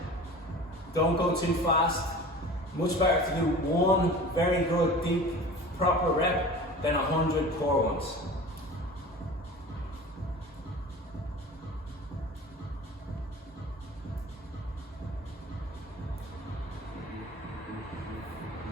Don't go too fast. Much better to do 1 very good, deep, proper rep than 100 poor ones.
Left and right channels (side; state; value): both; normal; correlation 0.39